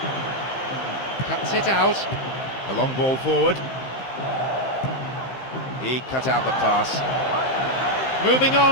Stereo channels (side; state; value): right; late; 15 ms